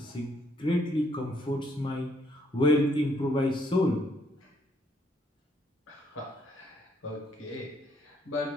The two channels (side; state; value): both; normal; correlation 0.70